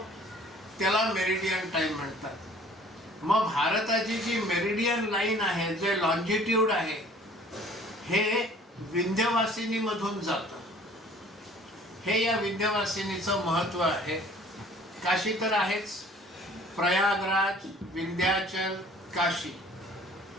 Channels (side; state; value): both; normal; correlation 0.52